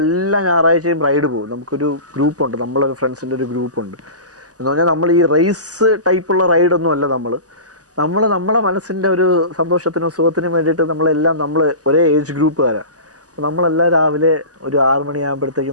ഞായറാഴ്ചയും റൈഡ് പോകും. നമുക്കൊരു ഗ്രൂപ്പുണ്ട്, നമ്മളൊരു ഫ്രണ്ട്സിൻ്റെ ഒരു ഗ്രൂപ്പുണ്ട്. എന്ന് പറഞ്ഞാൽ നമ്മൾ ഈ റേസ് ടൈപ്പുള്ള റൈഡൊന്നും അല്ല. നമ്മളെ മനസ്സിൻ്റെ ഒരു സന്തോഷത്തിനും സുഖത്തിനും വേണ്ടിയിട്ട് നമ്മൾ ഒരേ ഏജ് ഗ്രൂപ്പുകാരാണ്. അപ്പോൾ നമ്മളെല്ലാം രാവിലെ ഒരു 6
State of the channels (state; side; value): late; left; 0.67 ms